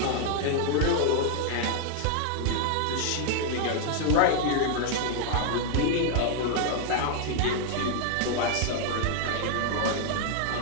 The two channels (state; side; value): different; both; correlation 0.00